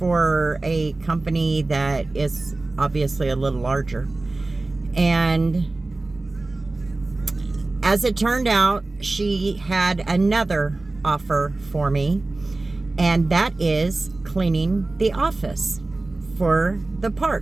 a company that is obviously a little larger. And as it turned out, she had another offer for me, and that is cleaning the office for the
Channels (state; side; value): quieter; left; 3.1 dB